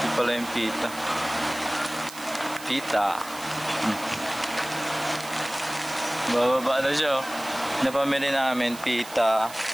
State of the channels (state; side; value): noise; right; hiss, 15 dB below the sound